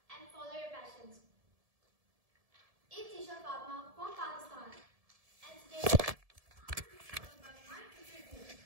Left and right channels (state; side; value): late; left; 1.7 ms